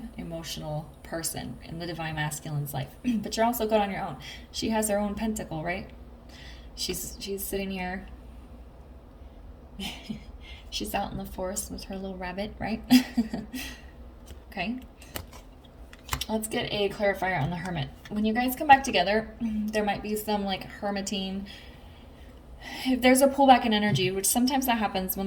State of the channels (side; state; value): both; identical; correlation 1.00